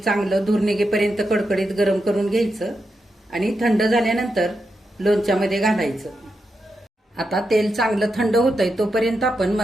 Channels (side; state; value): both; normal; correlation 0.86